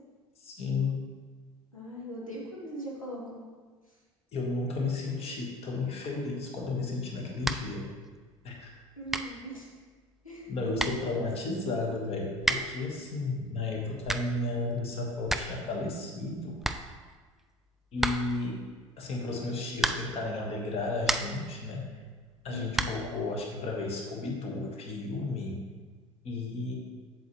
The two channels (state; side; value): normal; both; correlation 0.49